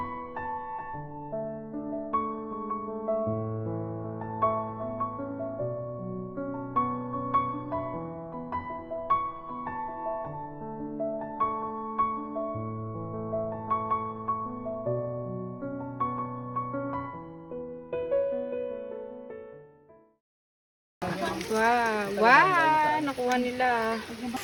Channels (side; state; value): both; identical; correlation 1.00